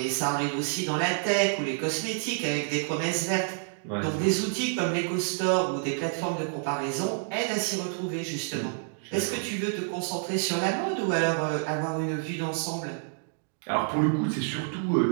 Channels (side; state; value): left; silent; digital silence